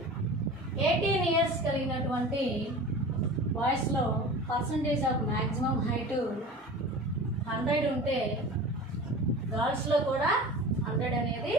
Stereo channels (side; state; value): both; normal; correlation 0.36